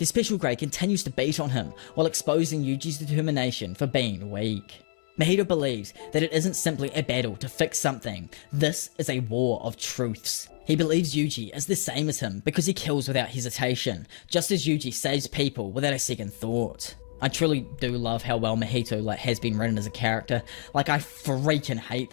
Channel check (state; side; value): silent; right; 59 dB below the other